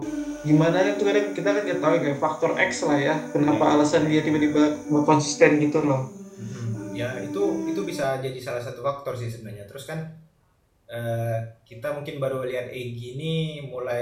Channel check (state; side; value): identical; both; correlation 1.00